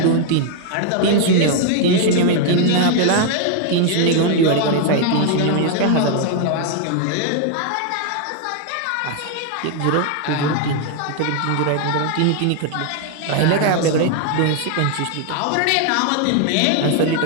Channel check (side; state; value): both; different; correlation 0.00